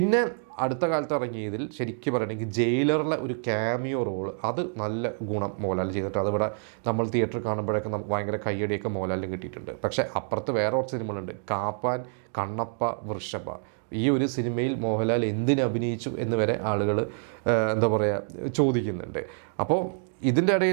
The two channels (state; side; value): silent; left; digital silence